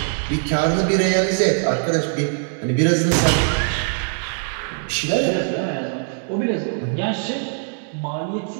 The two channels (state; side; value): silent; left; digital silence